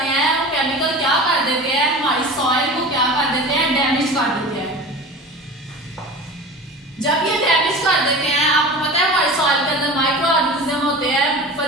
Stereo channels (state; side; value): normal; both; correlation 0.35